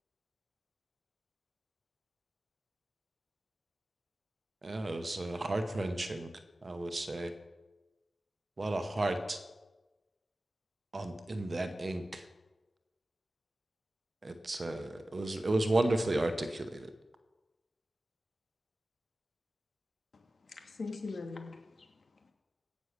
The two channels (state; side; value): normal; both; correlation 0.96